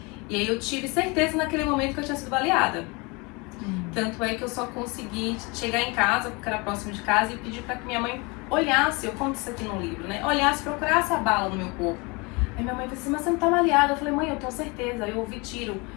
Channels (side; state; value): right; quieter; 27.7 dB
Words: E aí eu tive certeza naquele momento que eu tinha sido baleada. Tanto é que eu só consegui chegar em casa, porque era próximo de casa, e pedir para que minha mãe olhasse, eu conto isso aqui no livro, né? Olhasse, procurasse a bala no meu corpo. Aí minha mãe falou assim, mas você não tá baleada? Eu falei, mãe, eu tenho certeza, eu ouvi tiro,